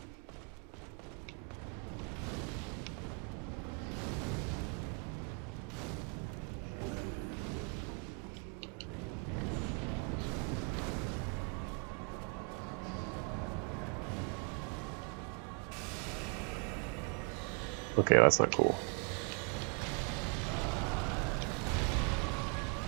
Okay, that's not cool.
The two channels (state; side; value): quieter; left; 36.9 dB